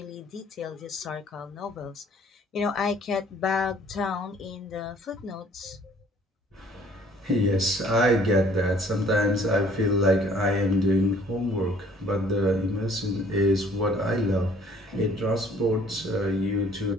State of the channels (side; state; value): both; normal; correlation 0.56